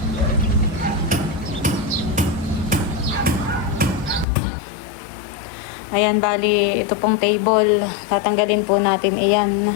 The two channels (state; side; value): drops out; right; at 4.2 s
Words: Ayan, bali, ito pong table. Tatanggalin po natin iyan.